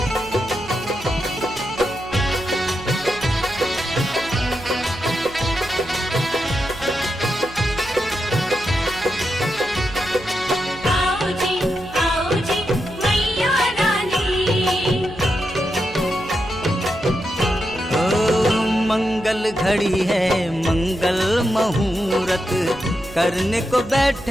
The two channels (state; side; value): noise; right; hum, 17 dB below the sound